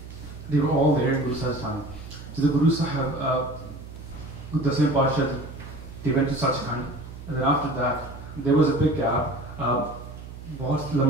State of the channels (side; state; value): right; noise; hum, 13 dB below the sound